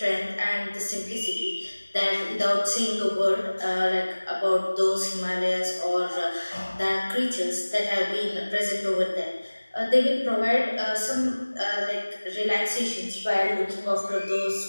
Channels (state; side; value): inverted; both; correlation -1.00